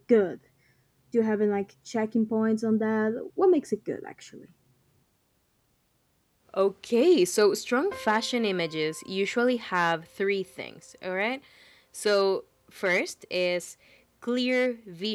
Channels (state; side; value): identical; both; correlation 1.00